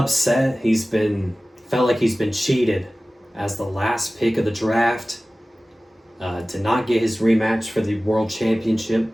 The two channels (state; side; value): normal; both; correlation 0.97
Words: Felt like he's been cheated as the last pick of the draft. did not get his rematch for the World Championship.